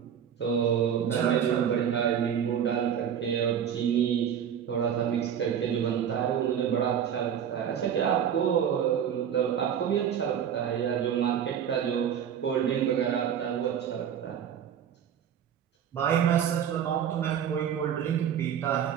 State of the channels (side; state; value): left; quieter; 8.8 dB